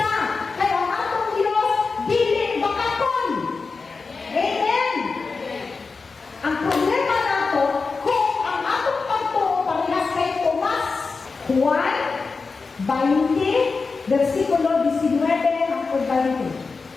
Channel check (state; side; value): quieter; right; 4.4 dB